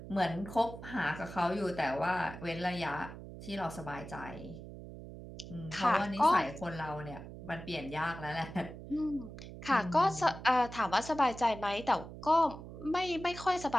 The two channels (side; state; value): right; noise; hum, 12 dB below the sound